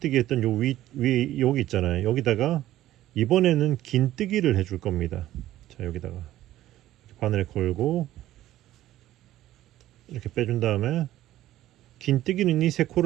했던 요 위 여기 있잖아요. 여기다가 이번에는 긴뜨기를 해줄 겁니다. 자, 여기다가 바늘 걸고 이렇게 빼준 다음에 긴뜨기는 이 세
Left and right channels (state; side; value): quieter; left; 14.1 dB